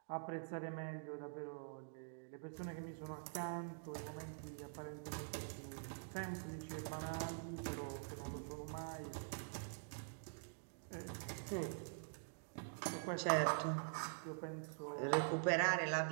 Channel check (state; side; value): silent; left; digital silence